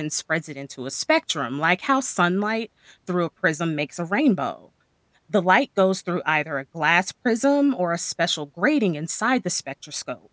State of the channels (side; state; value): both; identical; correlation 1.00